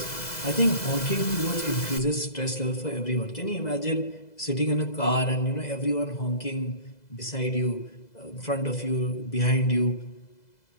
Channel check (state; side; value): late; right; 2.0 ms